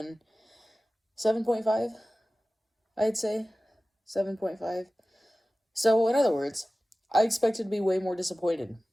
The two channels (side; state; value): both; normal; correlation 0.97